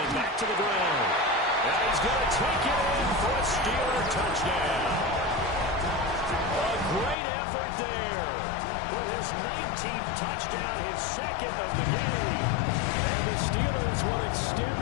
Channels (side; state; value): right; drops out; at 7.2 s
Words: Back to the ground. And he's going to take it in for a Steeler touchdown. A great effort there for his 19th touchdown, his second of the game. And the Steelers will extend